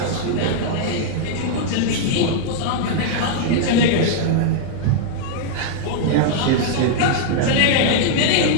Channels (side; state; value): both; different; correlation -0.01